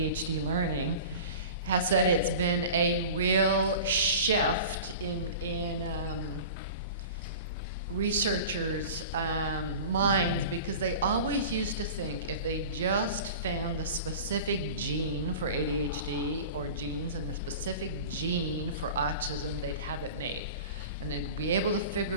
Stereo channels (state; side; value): inverted; both; correlation -0.36